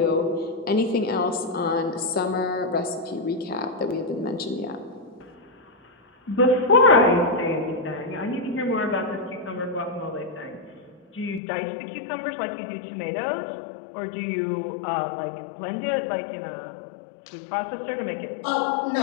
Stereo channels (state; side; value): drops out; right; at 11.4 s